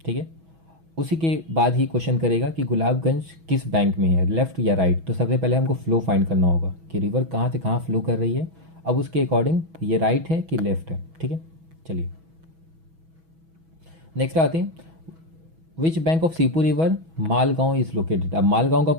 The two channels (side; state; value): left; late; 6.1 ms